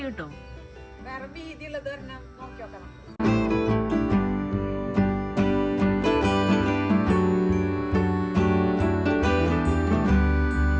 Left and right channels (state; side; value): identical; both; correlation 1.00